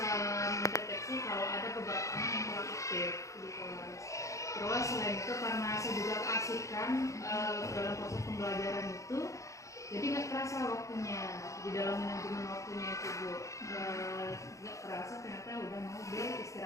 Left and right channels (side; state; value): right; late; 0.15 ms